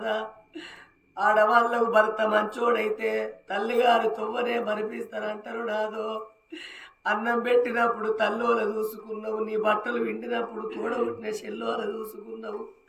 ఆడవాళ్ళకు భర్త మంచోడైతే తల్లిగారు తొవ్వనే మరిపిస్తారంటారు నాదో అన్నం పెట్టినప్పుడు తల్లోల చూసుకున్నావు నీ బట్టలు విండినప్పుడు తోడబుట్టిన చెల్లోల చూసుకున్నావు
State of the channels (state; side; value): identical; both; correlation 1.00